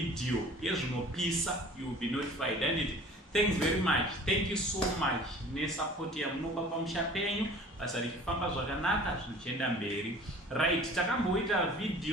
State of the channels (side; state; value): both; normal; correlation 0.46